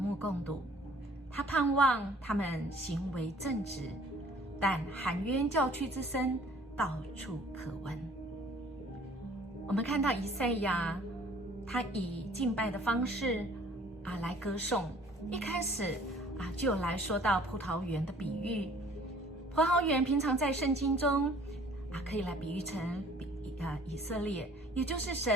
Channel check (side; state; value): both; normal; correlation 0.54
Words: 共睹。他盼望他们行为正直，但喊冤叫屈之声到处可闻。我们看到以赛亚，他以敬拜的方式来歌颂。一开始就来说到葡萄园的比喻。葡萄园平常在圣经中可以来比喻成以色列，也就是